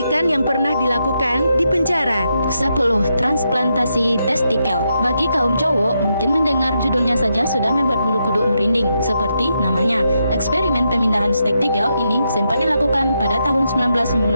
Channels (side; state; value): both; inverted; correlation -0.82